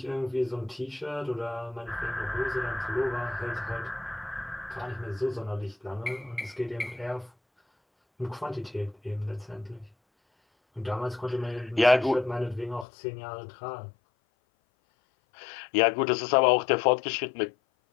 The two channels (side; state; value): right; drops out; at 12.9 s